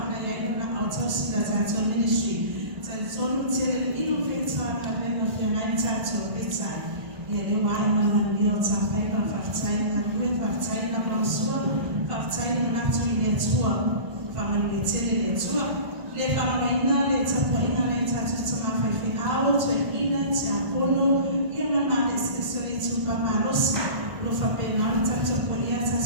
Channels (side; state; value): left; late; 1.5 ms